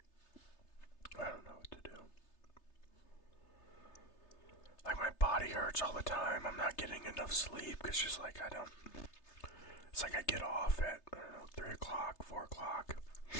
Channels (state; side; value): late; right; 3.3 ms